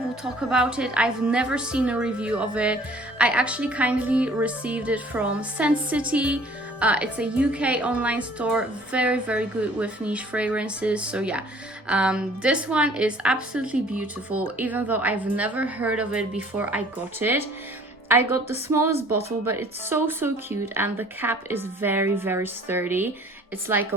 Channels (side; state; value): both; normal; correlation 0.53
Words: talk about it. I've never seen a review of it. I actually kindly received it from Scent City. It's a UK online store, very good with niche fragrances. So yeah, this one is absolutely beautiful, even though I've never heard of it before I got it. I got the smallest bottle, but it's so cute, and the cap is very sturdy. It's like